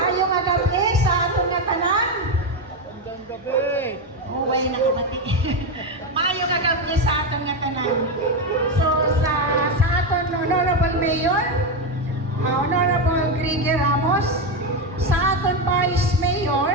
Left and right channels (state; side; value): normal; both; correlation 0.10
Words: nga gabi sa atong nga tanan. Magandang gabi. Oh, way nakabati. Maayong nga gabi sa atong nga tanan. So, sa aton Honorable Mayor, Honorable Griggy Ramos, sa aton Vice Mayor,